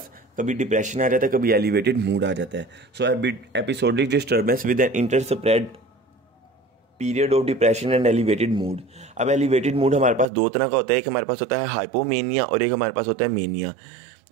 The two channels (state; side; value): drops out; left; at 10.2 s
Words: कभी डिप्रेशन आ जाता है, कभी एलिवेटेड मूड आ जाता है। So episodic disturbance with an interspersed period of depression and elevated mood. अब एलिवेटेड मूड हमारे पास दो तरह का होता है, एक हमारे पास होता है हाइपोमेनिया और एक हमारे पास होता है मेनिया।